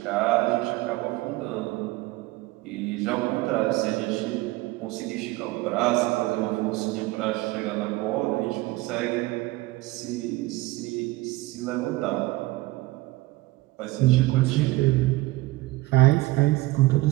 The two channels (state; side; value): quieter; left; 19.7 dB